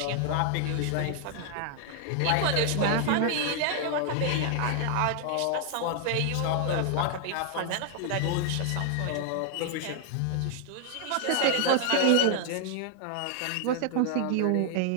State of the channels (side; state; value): both; different; correlation 0.00